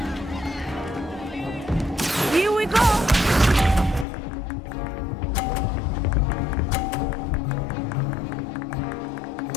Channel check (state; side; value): drops out; right; at 4.0 s